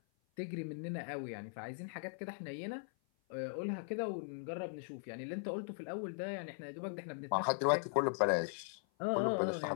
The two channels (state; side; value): silent; right; 51 dB below the other